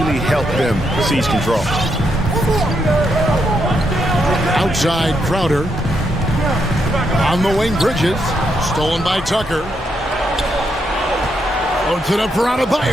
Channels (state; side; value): normal; both; correlation 0.79